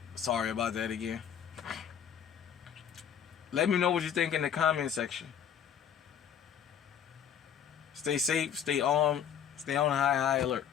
Sorry about that again. Let me know what you think in the comment section. Stay safe, stay on high alert.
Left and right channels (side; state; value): right; quieter; 8.5 dB